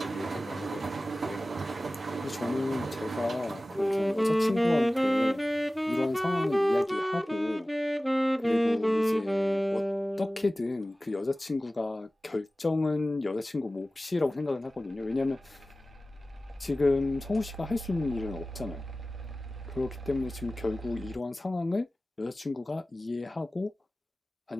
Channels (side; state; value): both; normal; correlation 0.97